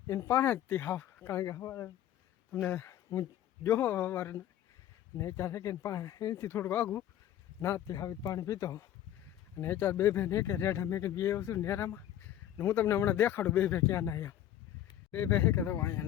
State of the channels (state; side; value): quieter; right; 11.7 dB